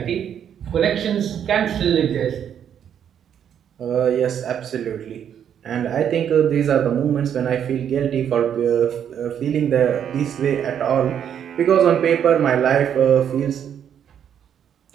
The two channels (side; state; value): left; quieter; 8.9 dB